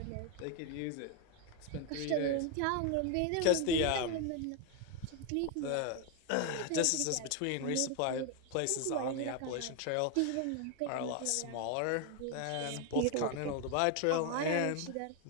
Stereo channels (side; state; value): both; different; correlation 0.01